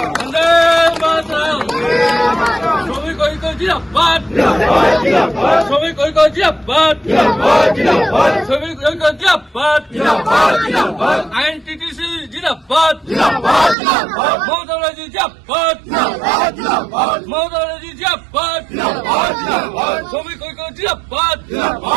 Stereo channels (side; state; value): left; drops out; at 13.8 s